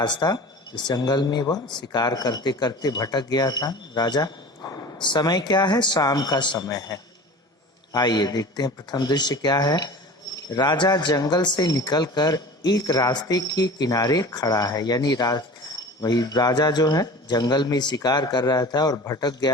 इस जंगल में वह शिकार करते करते भटक गया था राजा। समय क्या है? शाम का समय है। आइए देखते हैं प्रथम दृश्य क्या है। राजा जंगल से निकलकर एक रास्ते के किनारे खड़ा है, यानी वही राजा जो है जंगल में शिकार कर रहा था और भटक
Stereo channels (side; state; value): both; normal; correlation 0.38